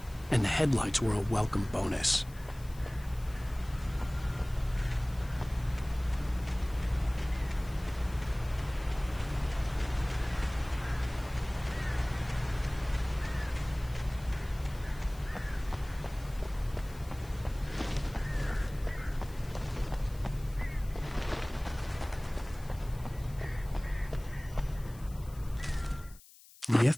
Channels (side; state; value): left; noise; hiss, 22 dB below the sound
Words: and the headlights were a welcome bonus. The